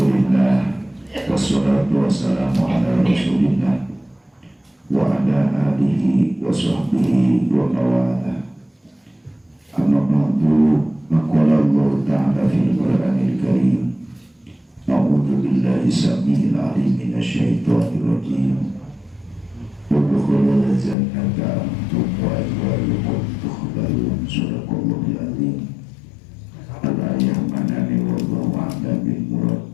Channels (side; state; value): right; drops out; at 21.0 s